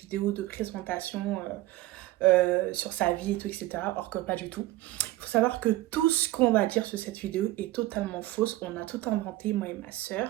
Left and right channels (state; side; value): quieter; left; 16.9 dB